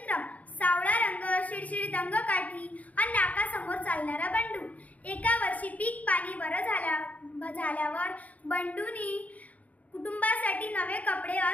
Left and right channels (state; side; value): late; right; 0.072 ms